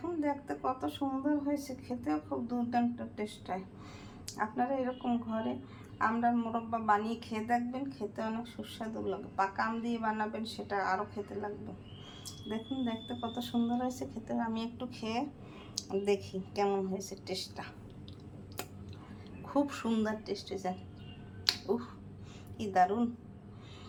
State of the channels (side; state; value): both; identical; correlation 1.00